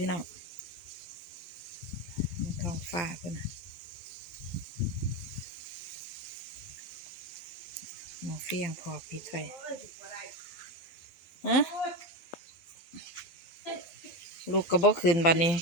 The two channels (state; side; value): late; right; 12 ms